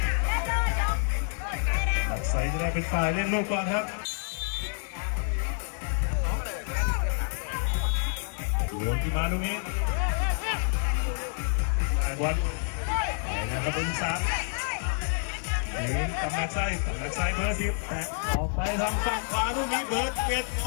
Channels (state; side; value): silent; right; 59 dB below the other